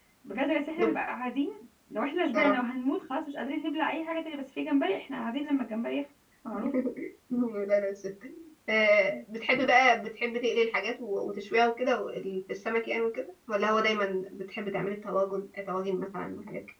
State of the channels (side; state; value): both; identical; correlation 1.00